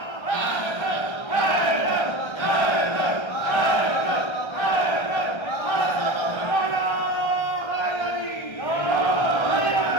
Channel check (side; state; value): right; late; 1.3 ms